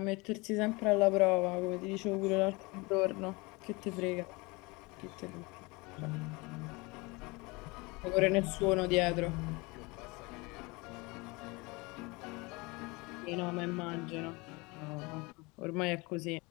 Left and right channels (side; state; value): right; quieter; 25.6 dB